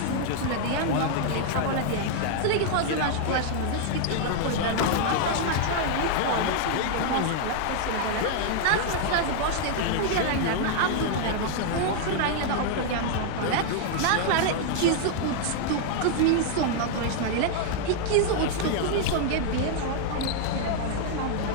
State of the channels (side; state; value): both; different; correlation 0.00